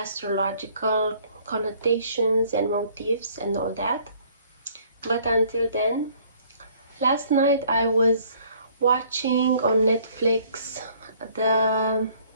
connotations and motifs and all that. But until then, last night I was watching on Netflix the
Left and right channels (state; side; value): inverted; both; correlation -0.59